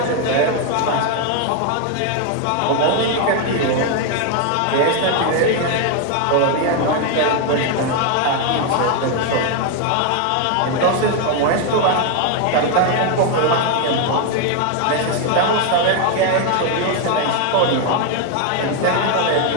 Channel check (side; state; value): both; different; correlation 0.01